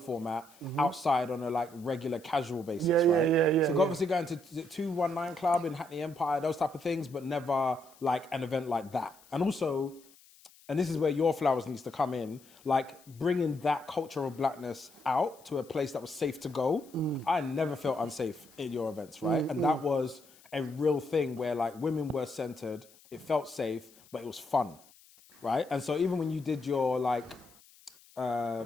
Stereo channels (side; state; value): left; noise; hiss, 26 dB below the sound